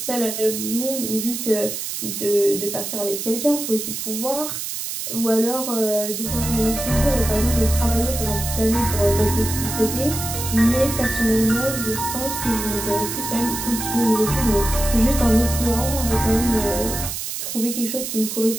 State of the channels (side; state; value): right; noise; hiss, 5 dB below the sound